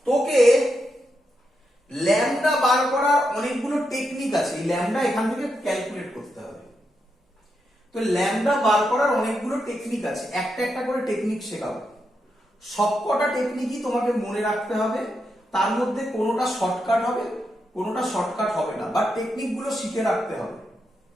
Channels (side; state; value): both; normal; correlation 0.84